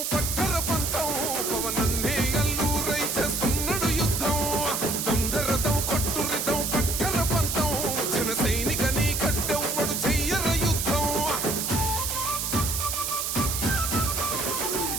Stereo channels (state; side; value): noise; right; hiss, 1 dB below the sound